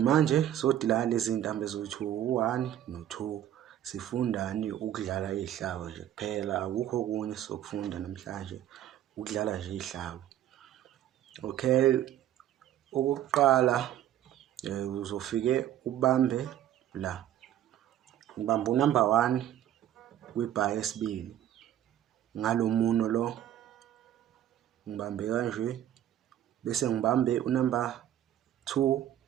sodila lezi zintambo ezothi u1 no2 sifundani ukudlala izihlabo nje kuphela, akukho okunye sokufunda namhlanje, ukudlala nje izihlabo. Okay, okokuqala uzofike ubambe la, ngibamba unumber 1 kwibar yesibili ngalo muno lo, ngibambe kanje bese ngibambe unumber 2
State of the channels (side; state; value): left; quieter; 11.6 dB